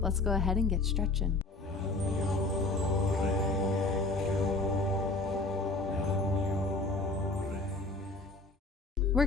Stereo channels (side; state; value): right; quieter; 3.2 dB